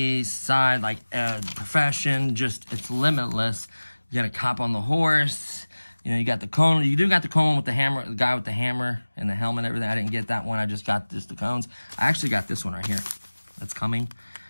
side, like profession, just, it's limitless. You got a cop on the horse. You know, you got the cone. You do got the cone with the hammer, the guy with the hammer and the helmet and everything. I didn't get that one. I just got the cones. I actually got this one right here. That's coming.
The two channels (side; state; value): both; inverted; correlation -1.00